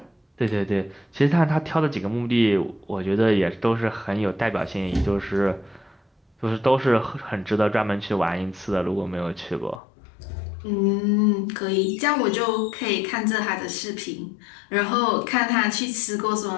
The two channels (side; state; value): right; drops out; at 9.8 s